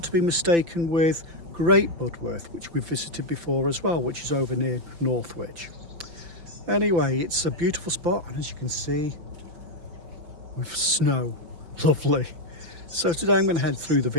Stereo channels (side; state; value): left; late; 5.9 ms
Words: to be mistaken with Great Budworth, which we've visited before as well, which is over near Northwich. Anyway, it's a beautiful spot, and as you can see, with snow, lovely. So today I'm going to head through the